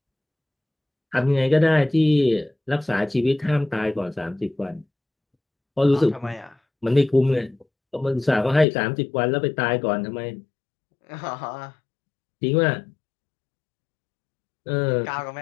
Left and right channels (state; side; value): drops out; right; at 8.7 s